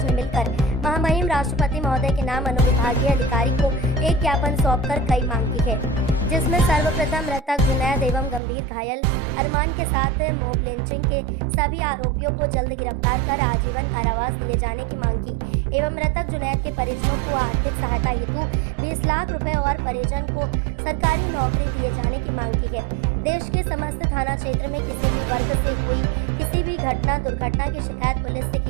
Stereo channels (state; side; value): drops out; left; at 8.4 s